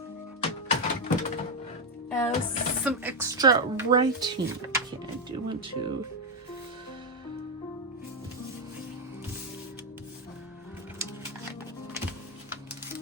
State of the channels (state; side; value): normal; both; correlation 0.05